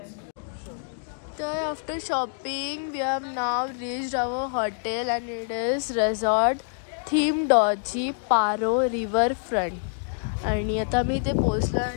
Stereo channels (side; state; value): right; silent; digital silence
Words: तर after shopping we have now reached our hotel and it is resort theme डॉजी पारो रिव्हर फ्रंट. आणि आता मी इथे पोहोचलो